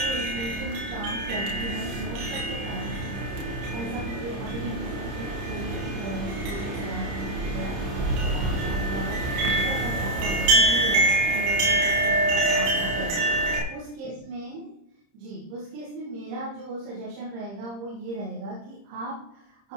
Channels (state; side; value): late; left; 30 ms